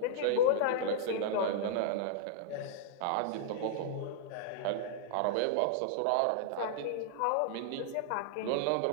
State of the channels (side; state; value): both; different; correlation -0.01